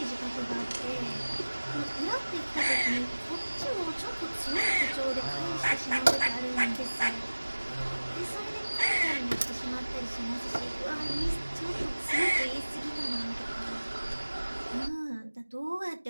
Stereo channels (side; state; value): both; inverted; correlation -1.00